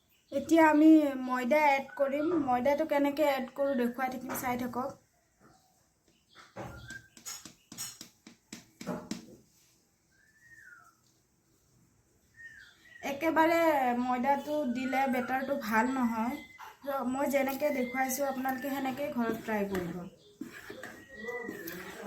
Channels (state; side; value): identical; both; correlation 1.00